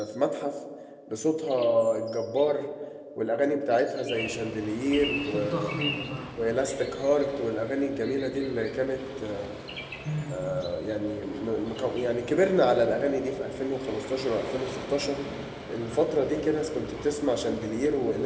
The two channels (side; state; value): both; identical; correlation 1.00